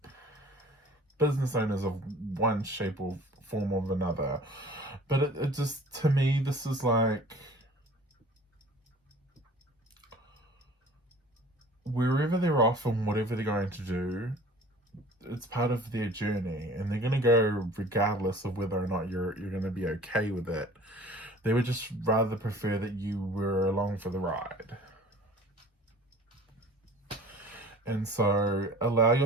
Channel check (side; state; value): both; normal; correlation 0.47